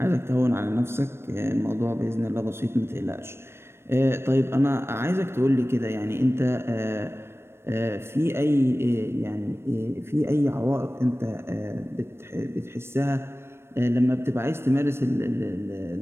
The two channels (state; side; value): late; left; 0.12 ms